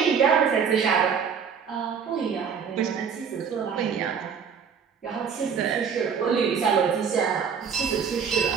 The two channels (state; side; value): quieter; left; 6.7 dB